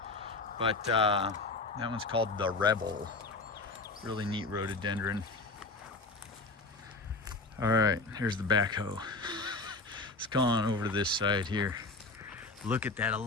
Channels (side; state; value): right; quieter; 3.5 dB